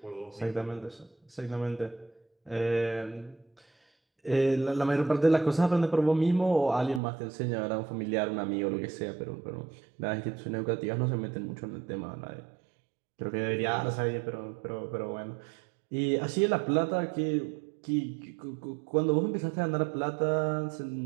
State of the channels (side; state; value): left; drops out; at 7.0 s